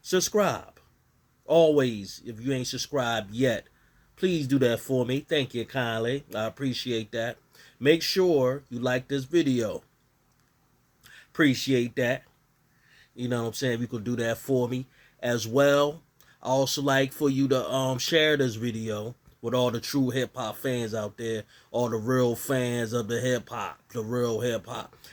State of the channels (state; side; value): identical; both; correlation 1.00